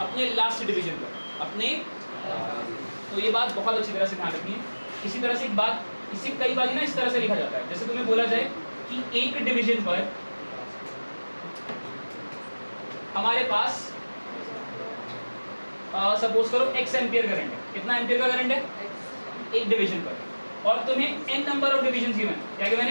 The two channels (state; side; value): inverted; both; correlation -1.00